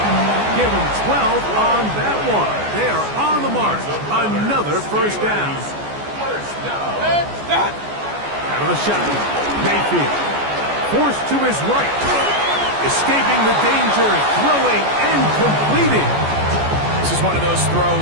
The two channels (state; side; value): late; left; 14 ms